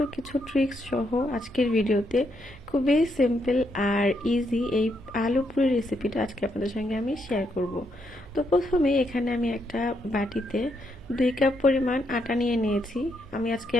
কিছু ট্রিক্স সহ আজকের ভিডিওতে খুবই সিম্পল আর ইজি এই আলু পুরি রেসিপিটা আজকে আপনাদের সঙ্গে আমি শেয়ার করব। তো প্রথমে এখানে আমি একটা বাটিতে 2 কাপ পরিমাণ আটা নিয়ে নিয়েছি। আমি আজকে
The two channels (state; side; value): noise; right; hum, 23 dB below the sound